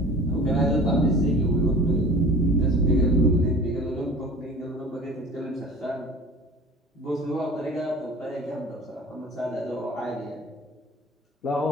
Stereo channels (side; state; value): both; normal; correlation 0.42